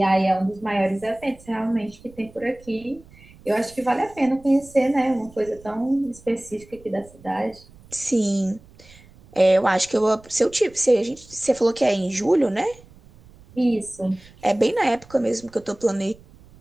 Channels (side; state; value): right; noise; rumble, 24 dB below the sound